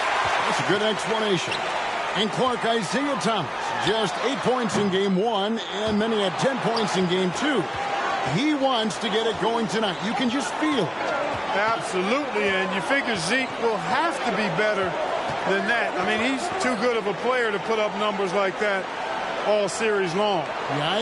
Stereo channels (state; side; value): identical; both; correlation 1.00